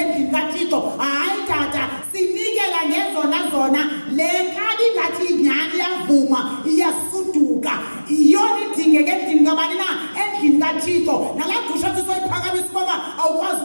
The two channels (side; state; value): both; inverted; correlation -1.00